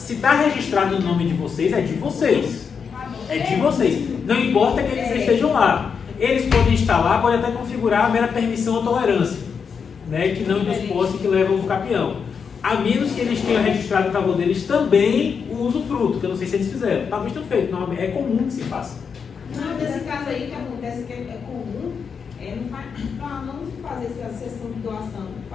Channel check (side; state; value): right; quieter; 6.2 dB